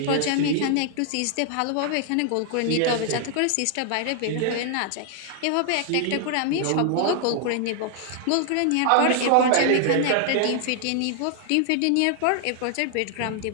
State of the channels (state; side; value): different; both; correlation 0.00